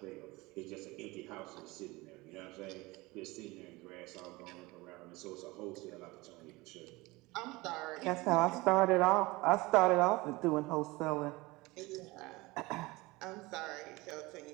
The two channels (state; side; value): quieter; left; 22.0 dB